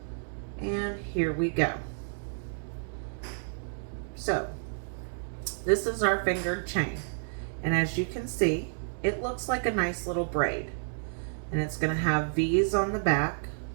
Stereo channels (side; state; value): left; silent; digital silence